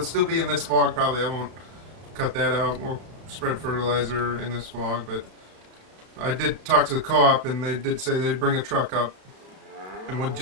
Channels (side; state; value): left; late; 32 ms